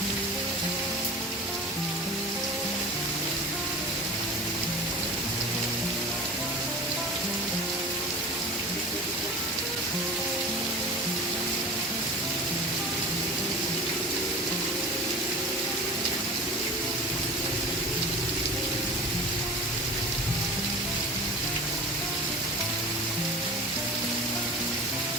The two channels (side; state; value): both; normal; correlation 0.36